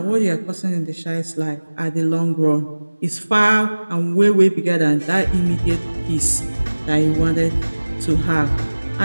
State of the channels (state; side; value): inverted; both; correlation -1.00